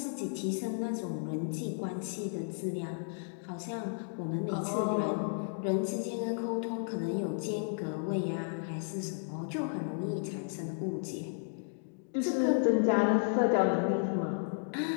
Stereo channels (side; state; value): right; silent; digital silence